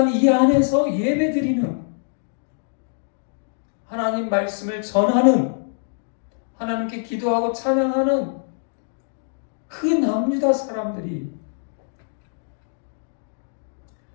이 안에서 예배드리는, 하나님 말씀을 전하는, 하나님께 기도하고 찬양하는 그 남유다 사람들이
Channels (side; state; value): right; silent; digital silence